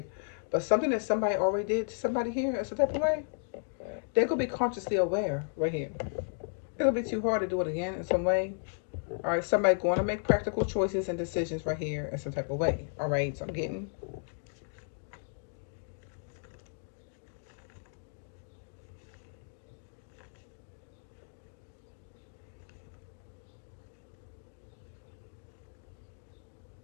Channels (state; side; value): silent; right; digital silence